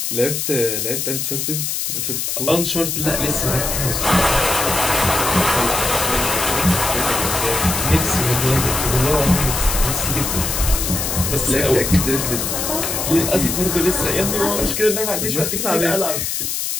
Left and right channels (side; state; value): left; noise; hiss, 2 dB below the sound